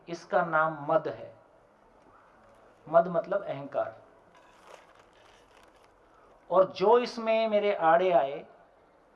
इसका नाम मद है। मद मतलब अहंकार। और जो इसमें मेरे आड़े आए,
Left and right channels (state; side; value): identical; both; correlation 1.00